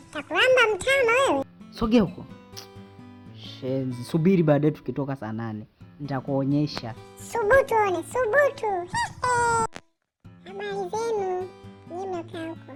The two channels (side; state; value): both; identical; correlation 1.00